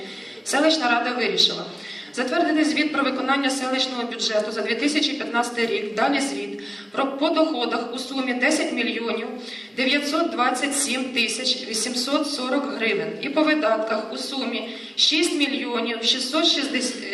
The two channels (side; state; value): both; identical; correlation 1.00